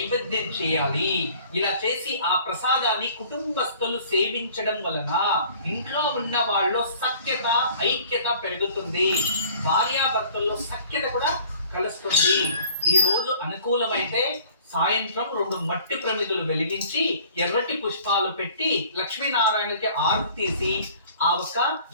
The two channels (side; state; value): both; inverted; correlation -0.51